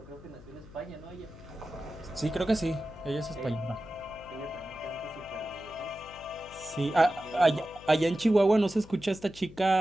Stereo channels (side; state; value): left; noise; hum, 19 dB below the sound